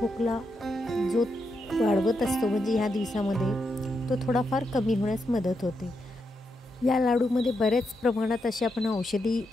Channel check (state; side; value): normal; both; correlation 0.83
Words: जो वाढवत असतो म्हणजे ह्या दिवसामध्ये तो थोडाफार कमी होण्यास मदत होते. या लाडूमध्ये बऱ्याच प्रमाणात असे आपण औषधी